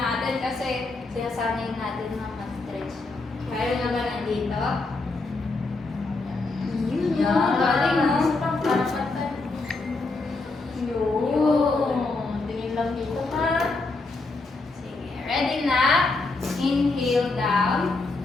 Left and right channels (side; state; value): right; quieter; 3.5 dB